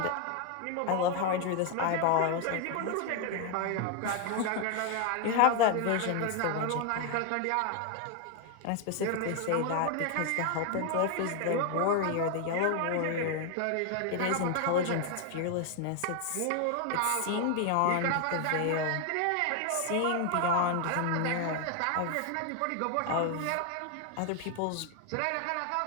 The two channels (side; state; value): both; different; correlation 0.01